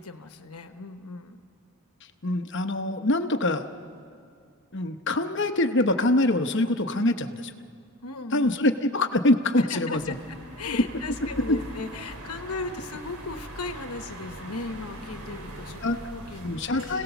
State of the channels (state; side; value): normal; both; correlation 0.34